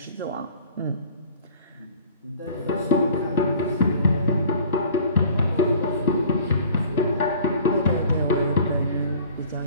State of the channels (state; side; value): inverted; both; correlation -0.48